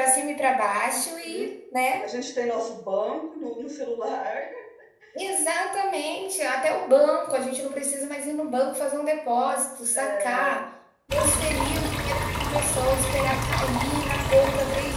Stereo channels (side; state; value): both; identical; correlation 1.00